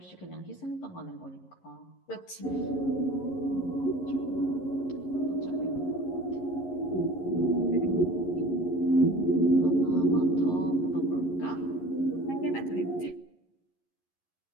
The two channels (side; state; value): right; late; 11 ms